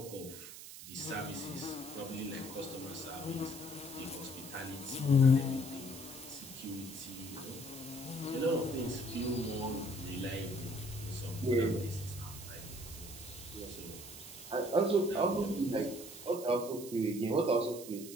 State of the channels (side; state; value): right; noise; hiss, 13 dB below the sound